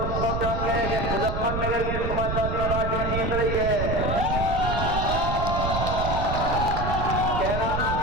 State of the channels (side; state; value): right; noise; rumble, 2 dB below the sound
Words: सब जान गए कि मुजफ्फरनगर की समाजवादी पार्टी जीत रही है, कैराना